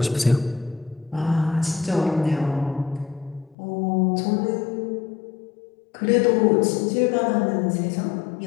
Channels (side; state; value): right; drops out; at 3.6 s